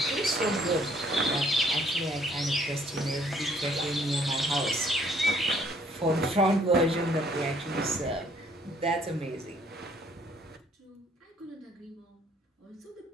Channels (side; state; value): both; normal; correlation 0.62